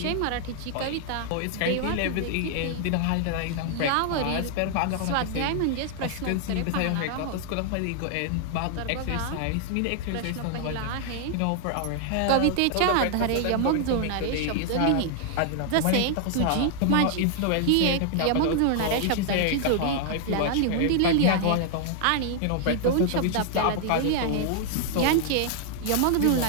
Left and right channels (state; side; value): different; both; correlation 0.00